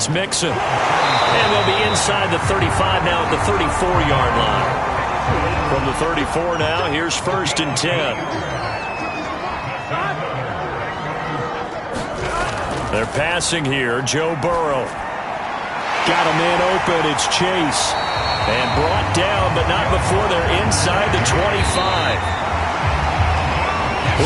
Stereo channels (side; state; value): both; identical; correlation 1.00